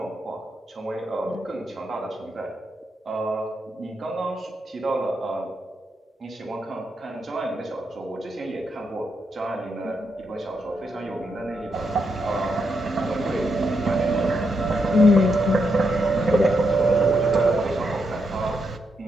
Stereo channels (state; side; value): normal; both; correlation 0.81